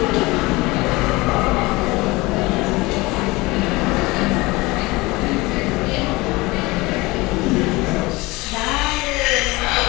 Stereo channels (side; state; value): right; quieter; 22.4 dB